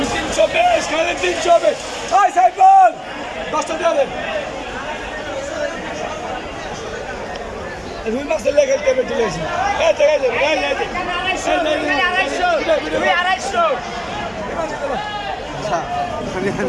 খালি 320। এই সাইফুল, 10টা দিয়ে দেন। রুই মাছের লেগে খেলতে চলে এসেছি। এই জায়গায় যাবে, এই জায়গায়। 250। আচ্ছা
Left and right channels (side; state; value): both; identical; correlation 1.00